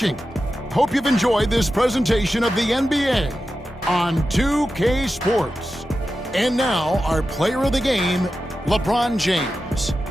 Hope you've enjoyed this presentation of the NBA on 2K Sports. And now, our player of the game, LeBron James.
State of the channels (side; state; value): both; normal; correlation 0.92